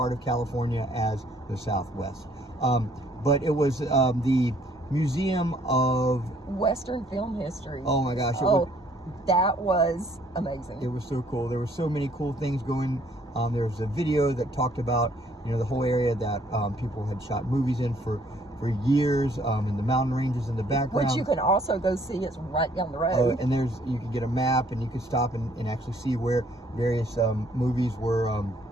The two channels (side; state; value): both; normal; correlation 0.63